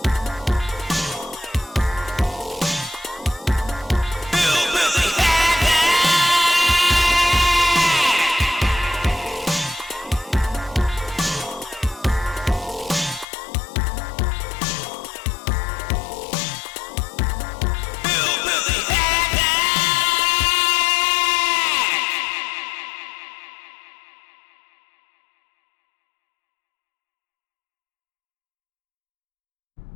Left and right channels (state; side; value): drops out; right; at 13.2 s